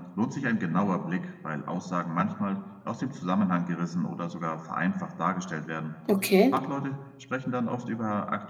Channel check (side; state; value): both; identical; correlation 1.00